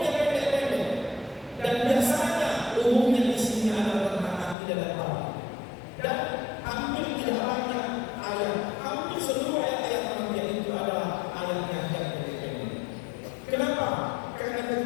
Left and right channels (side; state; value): right; drops out; at 4.5 s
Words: pendek-pendek, dan biasanya umumnya isinya adalah tentang akidah dan tauhid. Dan hampir tidak banyak ayat, hampir seluruh ayat-ayat pengertian itu adalah ayat yang pendek-pendek. Kenapa? Karena